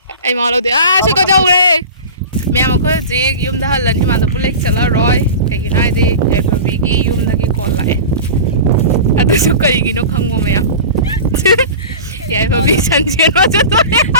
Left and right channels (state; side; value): inverted; both; correlation -0.33